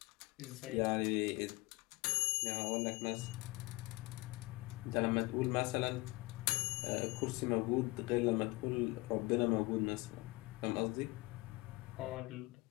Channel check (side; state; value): right; quieter; 23.4 dB